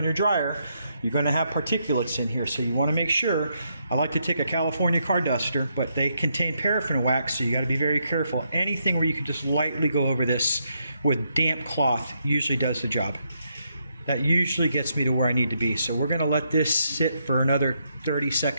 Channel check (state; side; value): inverted; both; correlation -0.78